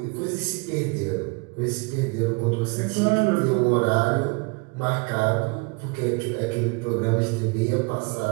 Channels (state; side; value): quieter; left; 29.8 dB